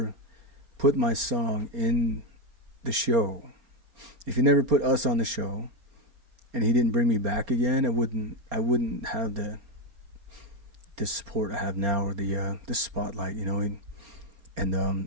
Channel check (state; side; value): late; left; 4.3 ms